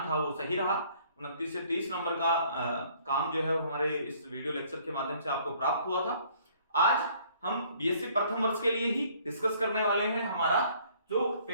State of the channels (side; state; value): both; inverted; correlation -0.59